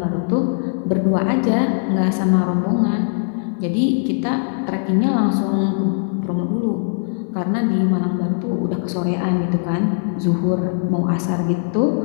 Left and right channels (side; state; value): right; silent; digital silence